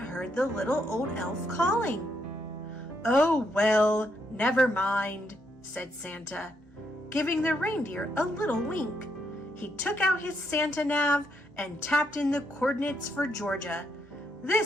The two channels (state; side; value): normal; both; correlation 0.77